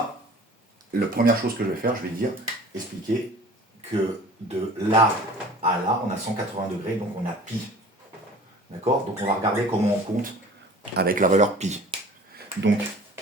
la première chose que je vais faire, je vais dire, expliquer que de là à là, on a 180 degrés, donc on a pi. D'accord? Donc on va regarder comment on compte avec la valeur pi. Donc,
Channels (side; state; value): both; normal; correlation 0.45